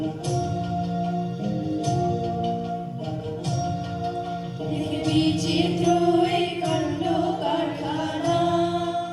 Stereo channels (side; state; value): both; identical; correlation 1.00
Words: বিচিত্র এই কাণ্ড কারখানা,